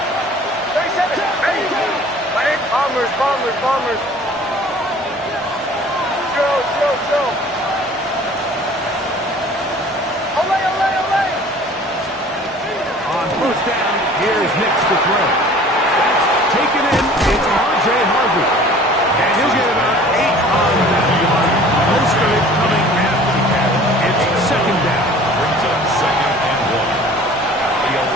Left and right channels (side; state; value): both; normal; correlation 0.48